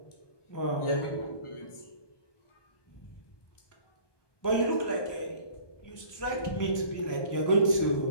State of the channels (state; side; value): late; right; 1.2 ms